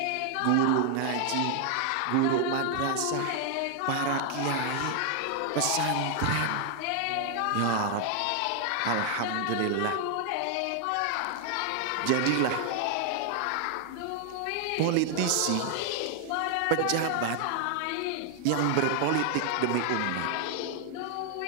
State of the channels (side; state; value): both; different; correlation 0.00